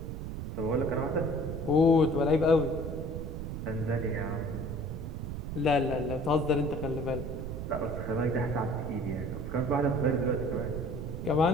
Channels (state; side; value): noise; right; rumble, 6 dB below the sound